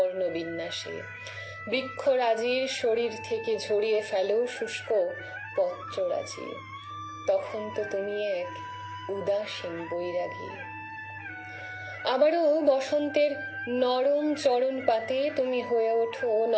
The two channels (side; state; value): both; identical; correlation 1.00